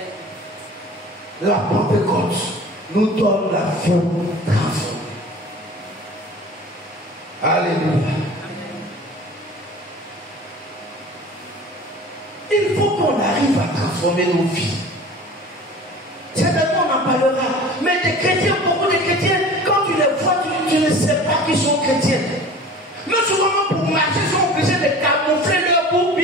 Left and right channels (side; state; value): both; normal; correlation 0.41